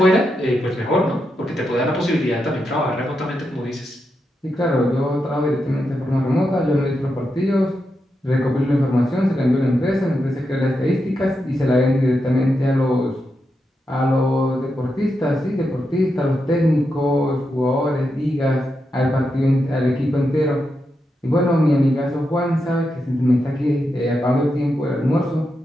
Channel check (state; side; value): normal; both; correlation 0.86